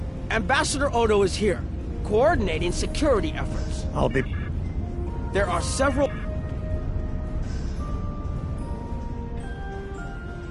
Ambassador Odo is here, coordinating security efforts. I'll be... There are several...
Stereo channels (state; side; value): identical; both; correlation 1.00